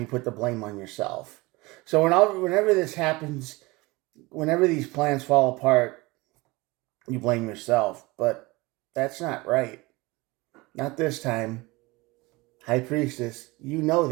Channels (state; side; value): quieter; left; 23.0 dB